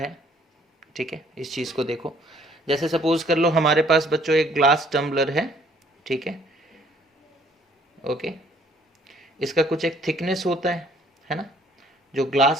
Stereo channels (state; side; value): normal; both; correlation 0.61